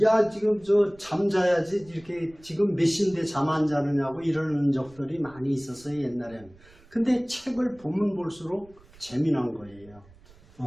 야 지금 저 잠자야지 이렇게 지금 몇 시인데 잠 안 자느냐고 이러는 적들이 많이 있었어요 옛날에는. 근데 책을 보면 볼수록 재미난 거예요.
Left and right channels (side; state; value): right; noise; rumble, 26 dB below the sound